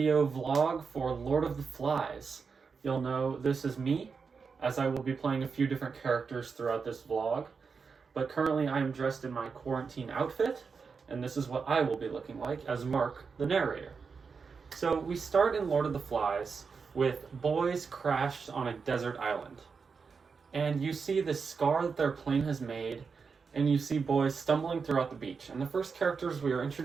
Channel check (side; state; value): left; quieter; 5.3 dB